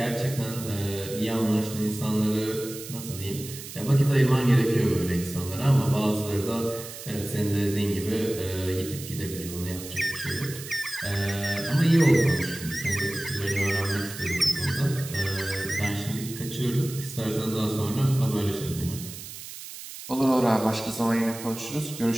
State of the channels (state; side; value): noise; right; hiss, 12 dB below the sound